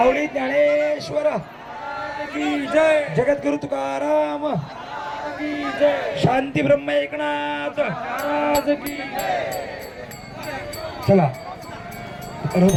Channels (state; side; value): identical; both; correlation 1.00